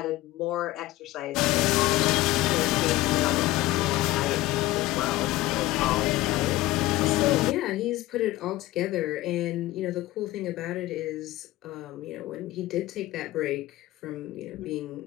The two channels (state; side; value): quieter; right; 17.3 dB